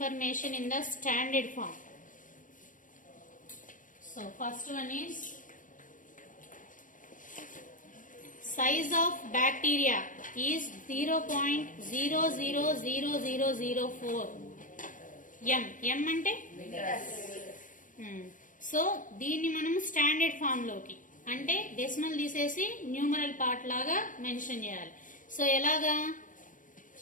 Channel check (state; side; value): late; right; 0.38 ms